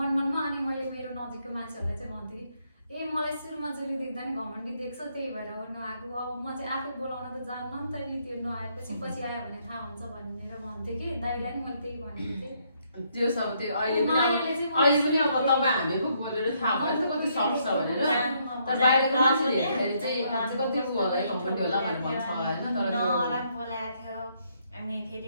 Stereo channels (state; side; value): inverted; both; correlation -0.72